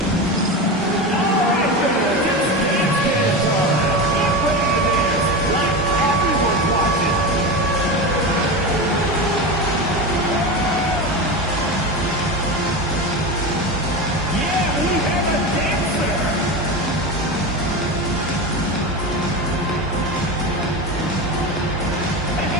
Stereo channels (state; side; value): normal; both; correlation 0.22